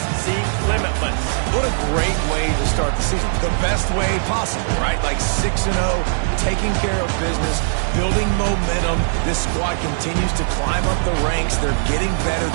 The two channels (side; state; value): left; silent; digital silence